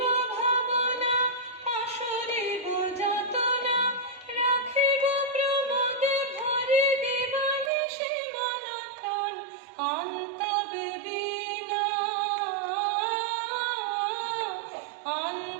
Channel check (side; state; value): left; drops out; at 7.7 s